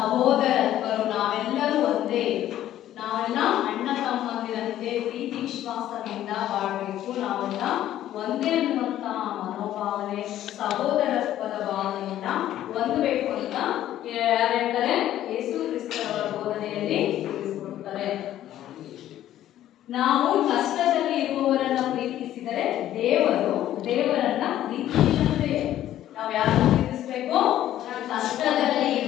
ನಾವೆಲ್ಲರೂ ಒಂದೇ, ನಾವೆಲ್ಲ ಅಣ್ಣ ತಮ್ಮಂದಿರಂತೆ ಪ್ರೀತಿ ವಿಶ್ವಾಸದಿಂದ ಬಾಳಬೇಕು, ನಾವೆಲ್ಲ ಒಂದೇ ಅನ್ನುವಂತಹ ಮನೋಭಾವನೆ, ಸಹೋದರತ್ವದ ಭಾವನೆಯನ್ನ ಹೊಂದಬೇಕು ಅಂತ ಯಾರು ಹೇಳ್ತಾರೆ? ಯೇಸು ಕ್ರಿಸ್ತರವರ ಬೋಧನೆಯಲ್ಲಿ ತಿಳಿಸಿಕೊಡ್ತಾರೆ. ನಾವು ಕಷ್ಟದಲ್ಲಿ ಇರುವವರನ್ನ ಪ್ರೀತಿಸಿದರೆ ದೇವರನ್ನ ಪ್ರೀತಿಸಿದಂತೆ. ನಾವು ಯಾರನ್ನ ಪ್ರೀತಿಸಬೇಕು? ಕಷ್ಟದಲ್ಲಿ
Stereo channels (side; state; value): right; quieter; 12.5 dB